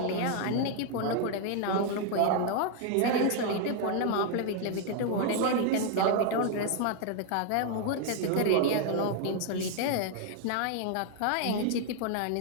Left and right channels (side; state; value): both; different; correlation 0.00